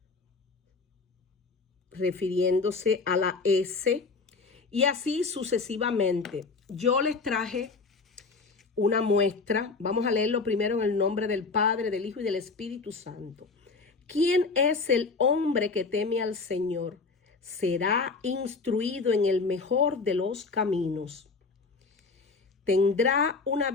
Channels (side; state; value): right; quieter; 4.3 dB